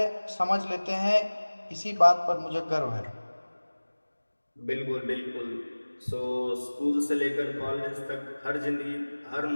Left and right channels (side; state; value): both; inverted; correlation -1.00